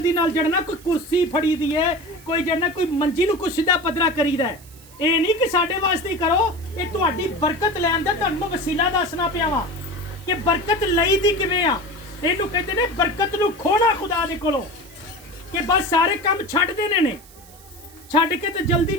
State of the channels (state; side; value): noise; right; hiss, 23 dB below the sound